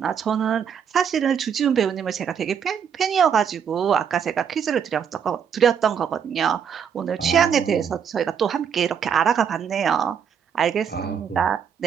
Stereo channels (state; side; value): quieter; left; 7.6 dB